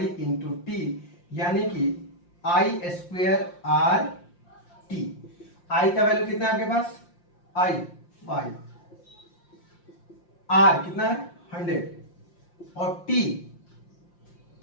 into T, यानी कि आई स्क्वेयर आर टी। आई का वैल्यू कितना है आपके पास, आई 5, आर कितना है 100, और टी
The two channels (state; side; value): late; right; 5.7 ms